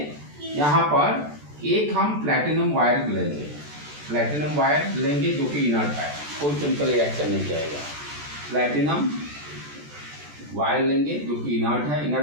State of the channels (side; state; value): left; late; 14 ms